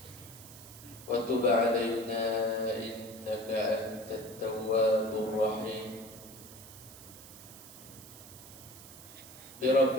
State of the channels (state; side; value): noise; right; hiss, 17 dB below the sound